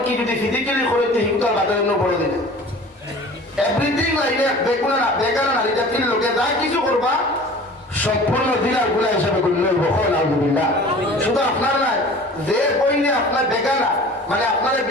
যদি ফিজিক্যালি করে হিংসার বাজার বলে দিলে এভরিথিং লাইনে বেগুনা না বেকার নারী জাতির লোকে যা কিছু করবা সম্পূর্ণ দিনার গুলা হিসাবে করলে আলহামদুলিল্লাহ শুধু আপনার নাই যে বইনে আপনার বেকানা মানে আপনার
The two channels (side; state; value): both; normal; correlation 0.43